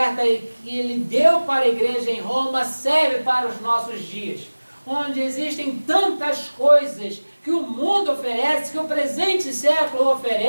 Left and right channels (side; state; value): both; inverted; correlation -1.00